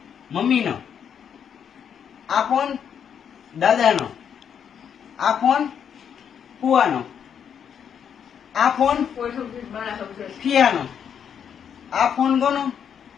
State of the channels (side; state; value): right; quieter; 8.1 dB